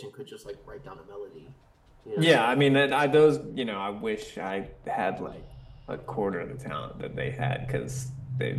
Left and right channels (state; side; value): identical; both; correlation 1.00